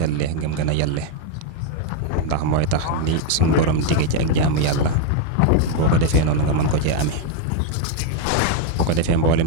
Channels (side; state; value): both; different; correlation 0.00